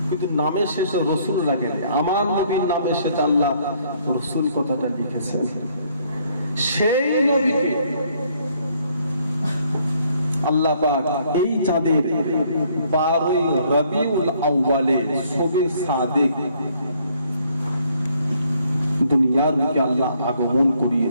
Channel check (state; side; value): inverted; both; correlation -0.66